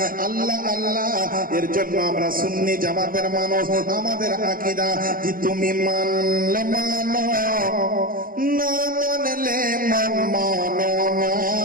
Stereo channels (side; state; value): left; late; 0.41 ms